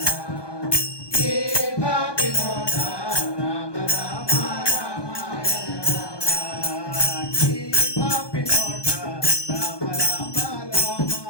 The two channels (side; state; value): right; late; 1.2 ms